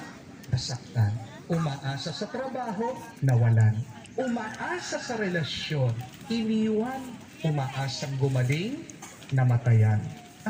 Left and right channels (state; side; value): identical; both; correlation 1.00